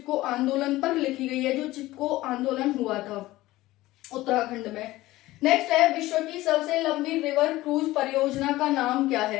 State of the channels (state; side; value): quieter; right; 17.5 dB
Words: आंदोलन पर लिखी गई है, जो चिपको आंदोलन हुआ था उत्तराखंड में। नेक्स्ट है, विश्व की सबसे लंबी रिवर क्रूज परियोजना का नाम क्या